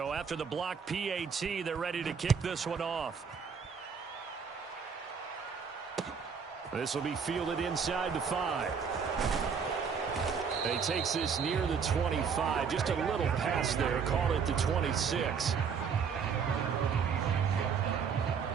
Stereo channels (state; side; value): quieter; left; 6.3 dB